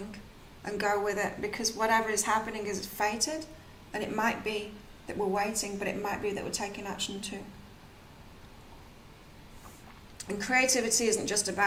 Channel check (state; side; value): identical; both; correlation 1.00